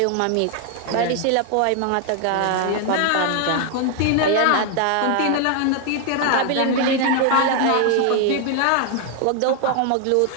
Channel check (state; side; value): different; both; correlation 0.00